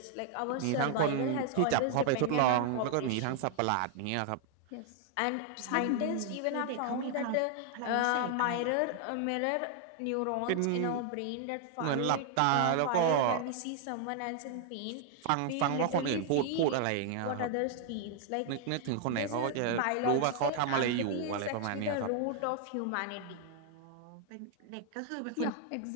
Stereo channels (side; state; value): both; different; correlation 0.00